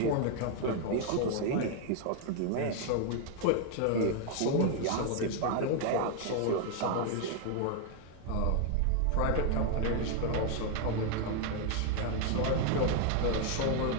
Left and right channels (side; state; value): both; different; correlation 0.00